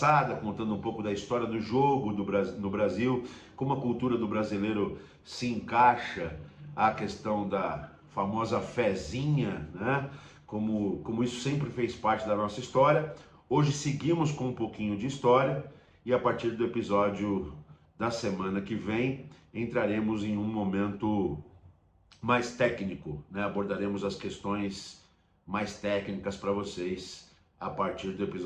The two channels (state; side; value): identical; both; correlation 1.00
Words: contando um pouco da história do jogo no Brasil, como a cultura do brasileiro se encaixa à questão da famosa fezinha, né? Como isso sempre fez parte da nossa história. Hoje seguimos com um pouquinho de história e a partir do episódio da semana que vem entraremos em um momento mais técnico, né? Abordaremos as questões mais técnicas para vocês a partir do